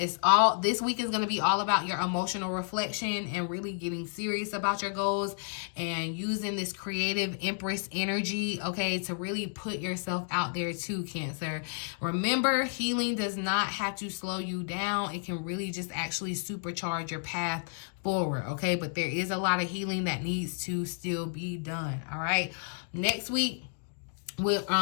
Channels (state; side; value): silent; right; digital silence